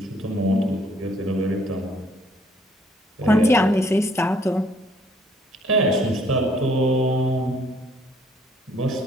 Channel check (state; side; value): normal; both; correlation 0.63